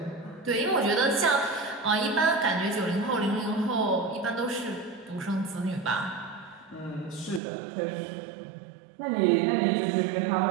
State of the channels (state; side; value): drops out; left; at 7.4 s